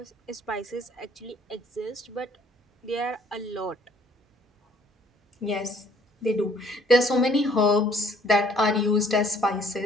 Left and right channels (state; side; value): normal; both; correlation 0.60